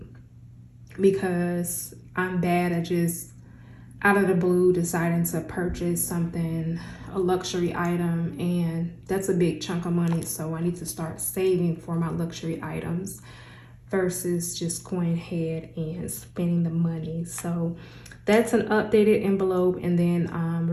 because I'm bad at just out of the blue deciding to purchase something, a luxury item, and that's a big chunk of money. So I need to start saving for my luxury items versus just going ahead and spending the money. So that's an updated envelope. And then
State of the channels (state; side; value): identical; both; correlation 1.00